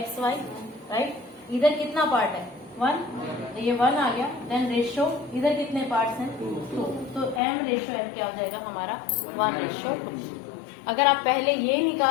Y, right. इधर कितना पार्ट है? 1, तो ये 1 आ गया। देन रेशो इधर कितने पार्ट्स हैं? 2, तो m रेशो n क्या हो जाएगा हमारा? 1:2। अगर आप पहले ये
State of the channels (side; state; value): right; drops out; at 7.4 s